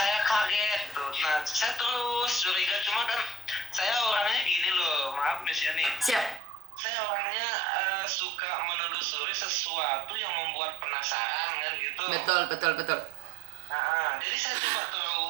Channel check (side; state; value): left; drops out; at 6.4 s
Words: kaget tuh. Nah, saya terus curiga, cuma kan saya orangnya gini loh, maaf Miss Yani. Siap. Saya orangnya suka menelusuri sesuatu yang membuat penasaran kan gitu. Betul. Nah, jadi saya coba